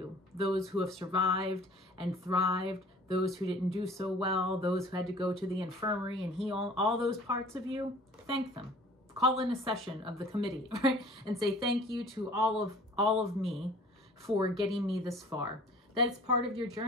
those who have survived and thrived, those who didn't do so well, those who had to go to the infirmary and heal, all those parts of you. Thank them. Call in a session of the committee, right? And say thank you to all of me for getting me this far. That's part of your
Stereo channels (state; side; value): normal; both; correlation 0.49